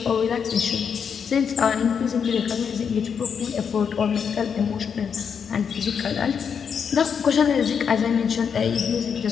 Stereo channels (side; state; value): right; quieter; 6.9 dB